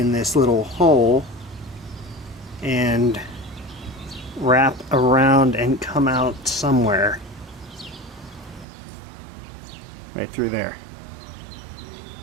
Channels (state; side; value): drops out; left; at 8.7 s